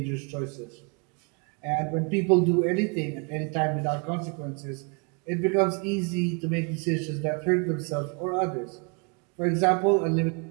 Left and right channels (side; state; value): left; quieter; 34.5 dB